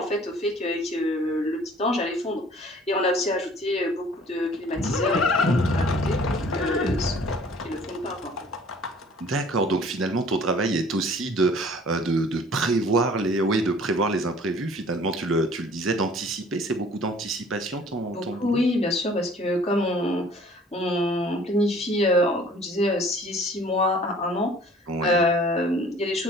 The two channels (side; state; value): both; normal; correlation 0.52